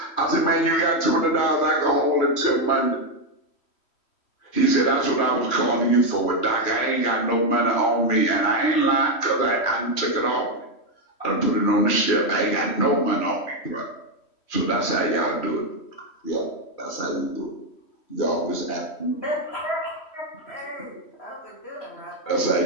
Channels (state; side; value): late; right; 3.1 ms